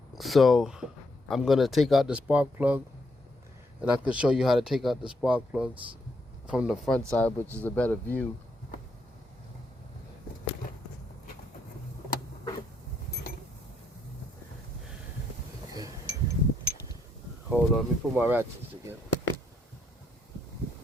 So I'm gonna take out the spark plug, and I can show you how to take out the spark plugs from the front side, which is a better view. Okay. Hold on, let me put my ratchets together.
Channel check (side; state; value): both; normal; correlation 0.75